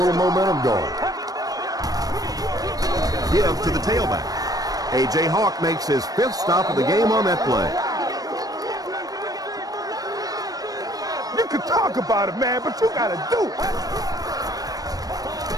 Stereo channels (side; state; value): left; late; 0.18 ms